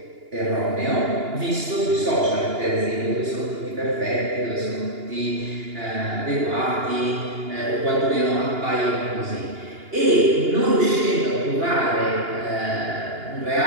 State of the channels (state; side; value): late; left; 2.8 ms